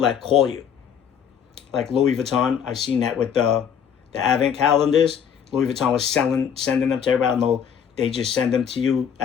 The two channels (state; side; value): quieter; right; 8.0 dB